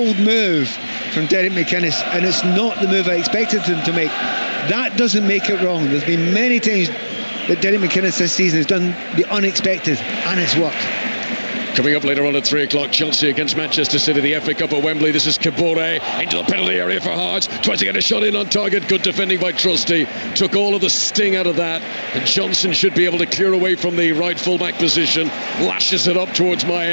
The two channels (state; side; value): inverted; both; correlation -1.00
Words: move from Derek McInnes, and it's not the move I expected him to make. That doesn't make it wrong. There's been many times that Derek McInnes this season has done the unexpected, and it's worked. Coming up later on at 3 o'clock, Chelsea against Manchester City, the FA Cup at Wembley. This is Kabore into the penalty area for Hearts. Tries to get a shot in on target. Good defending by Trusty. Took all of the sting out of that. And Johnson should be able to clear away from the right fullback position. Lashes it up towards